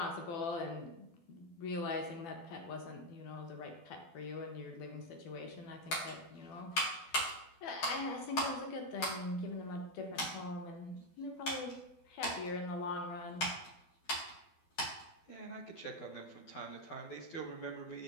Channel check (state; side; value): late; right; 12 ms